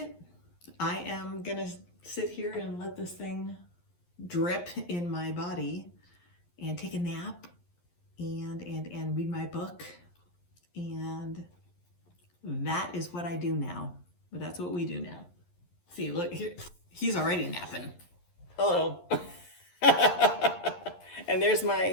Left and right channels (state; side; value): late; right; 11 ms